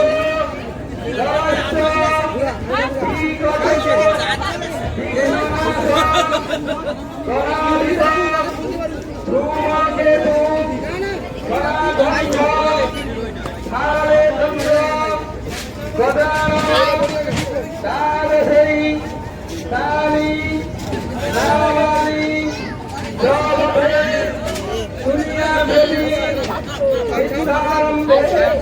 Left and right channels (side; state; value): both; identical; correlation 1.00